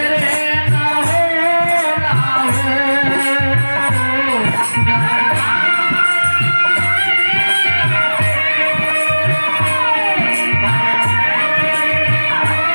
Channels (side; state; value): both; inverted; correlation -1.00